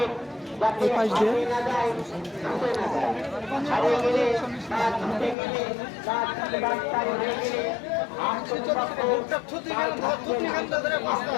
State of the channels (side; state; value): right; drops out; at 5.4 s